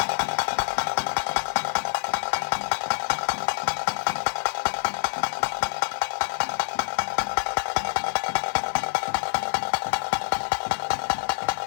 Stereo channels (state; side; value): silent; right; digital silence